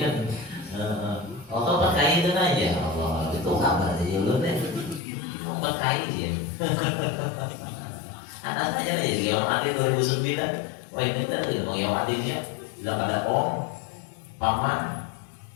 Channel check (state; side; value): drops out; right; at 5.0 s